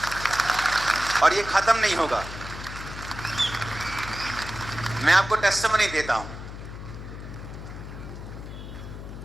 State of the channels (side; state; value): left; noise; hum, 10 dB below the sound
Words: और ये खत्म नहीं होगा। मैं आपको टेस्टिमनी देता हूं।